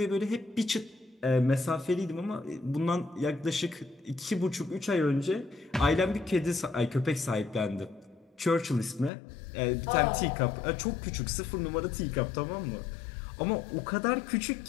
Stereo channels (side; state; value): right; drops out; at 9.1 s